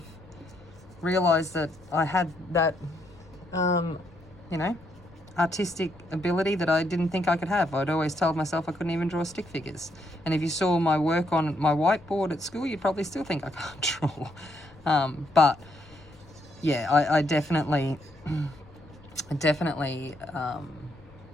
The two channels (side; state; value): left; noise; rumble, 24 dB below the sound